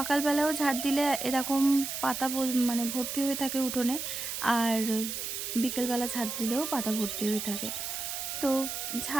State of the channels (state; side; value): noise; right; hiss, 4 dB below the sound